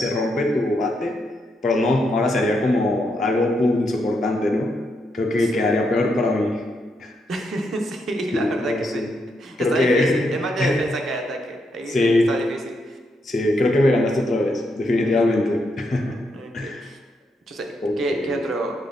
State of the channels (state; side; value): normal; both; correlation 0.80